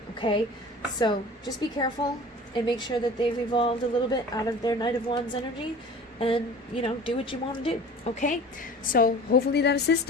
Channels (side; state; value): both; normal; correlation 0.41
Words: Okay, so just be careful and make sure that they've evolved a little bit out of their Knight of Wands energy, and, you know, do what you want to do. Okay, so hopefully that